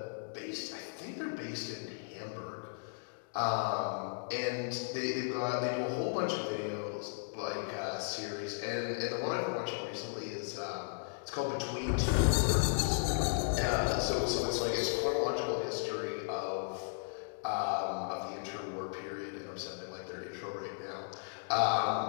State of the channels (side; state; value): right; silent; digital silence